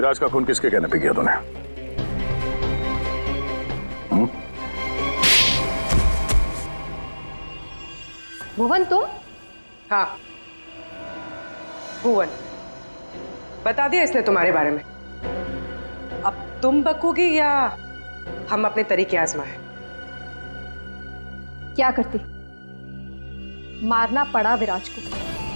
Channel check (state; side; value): inverted; both; correlation -1.00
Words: का खून किसके कहने पे किया तूने? भुवन तुम? हाँ, भुवन। बता दिया इसने तुम्हारे बारे में। अब तुम बकोगी या हम अपने तरीके आजमाएं? क्या करती? मारना पड़ा विराज को।